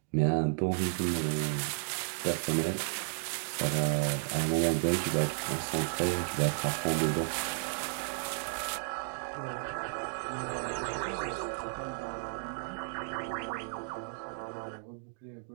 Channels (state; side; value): silent; left; digital silence